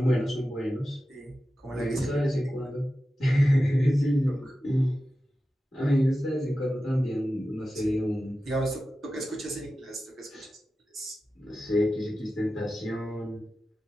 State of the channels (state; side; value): normal; both; correlation 0.93